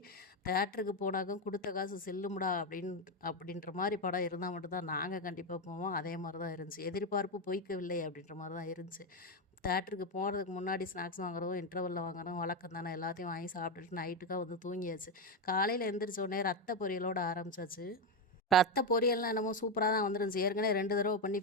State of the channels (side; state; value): both; normal; correlation 0.09